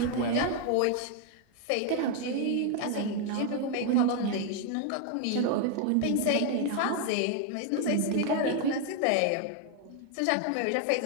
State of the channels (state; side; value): different; both; correlation 0.00